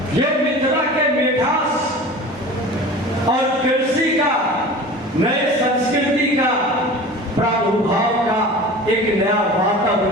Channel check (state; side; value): normal; both; correlation 0.38